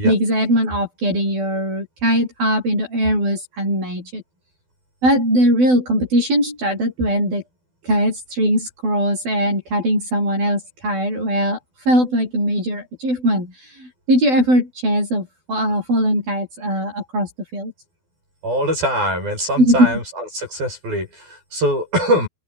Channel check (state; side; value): late; left; 12 ms